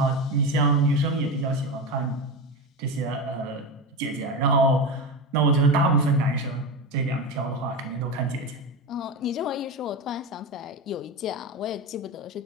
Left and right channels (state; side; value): normal; both; correlation 0.20